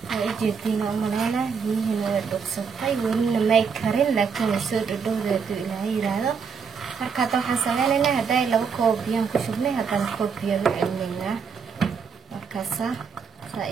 oo jeedina umaleena biyihiina way dhuuqsatay welina may karin laakiin soo dhadhowdeedu ilaahay yiraahdo marka waxaan sameynaynaa haday 2 koob biyo ku shubnay haddana koob biyo u celinaynaa markaasa saa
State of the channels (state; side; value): quieter; left; 6.0 dB